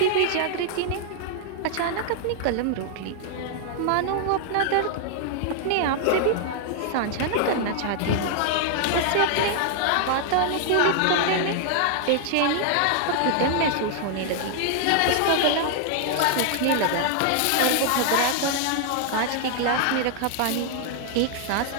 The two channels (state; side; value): different; both; correlation -0.01